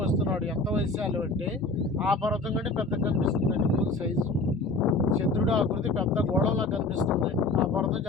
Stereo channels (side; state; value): right; quieter; 3.2 dB